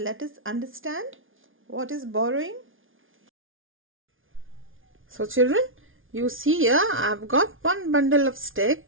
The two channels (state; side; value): late; left; 0.58 ms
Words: us understand what is borrowing. So children, you see here I have got one bundle of